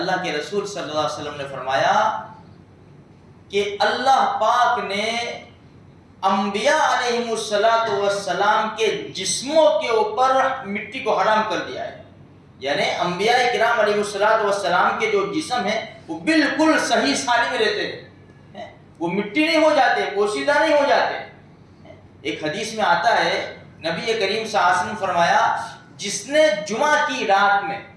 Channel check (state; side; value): identical; both; correlation 1.00